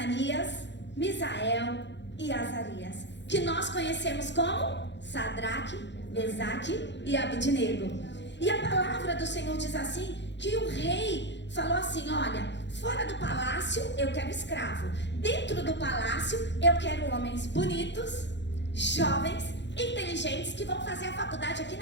Misael e Azarias, que nós conhecemos como Sadraque, Mesaque e Abednego. E a palavra do Senhor diz assim, que o rei falou assim: olha, fora do palácio eu quero escravo, dentro do palácio eu quero homens bonitos, jovens, inteligentes, que vão fazer a faculdade aqui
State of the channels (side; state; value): right; late; 0.52 ms